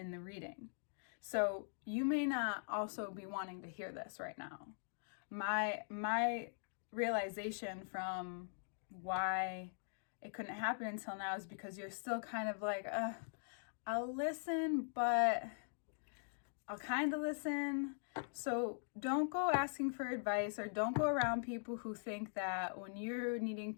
the reading. So you may not also be wanting to hear this right now. My realization from why it couldn't happen until now is because you're still kind of like, I'll listen, but I'll kind of listen. So don't go asking for advice, or don't go around people who think that when you're needing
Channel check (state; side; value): silent; right; digital silence